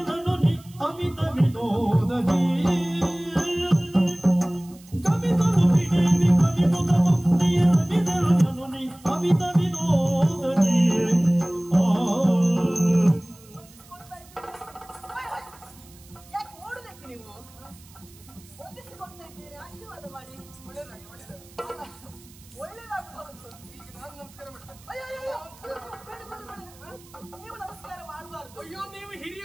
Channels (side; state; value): right; noise; hiss, 24 dB below the sound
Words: ನೀ ಅಮಿತ ವಿನೋದದಿ ಗಮಿಸಲು ಬಿಡೆ ವಿಭ್ರಮಿಸುತ್ತ ಬಂದಿಯೇ ರಮಿಸೆಲ್ಲನು ನೀ ಅಮಿತ ವಿನೋದದಿ ಯಾಕೆ ಓಡೋದಕ್ಕೆ ನೀವು ಹೊಂದಿಸಿಕೊಳ್ತಾ ಇದ್ದೀರಿ? ಆಶೀರ್ವಾದ ಮಾಡಿ. ಒಳ್ಳೇದಾಗಿ ಒಳ್ಳೇದಾಗಿ. ಒಳ್ಳೇದಾಗುವುದು. ಈಗ ನಾನು ನಮಸ್ಕಾರ ಮಾಡ್ತೇನೆ. ಅಯ್ಯೋ ಅಯ್ಯೋ ಬೇಡ ಬೇಡ ಬೇಡ. ನೀವು ನಮಸ್ಕಾರ ಮಾಡಬಾರ್ದು. ಅಯ್ಯೋ ನೀವು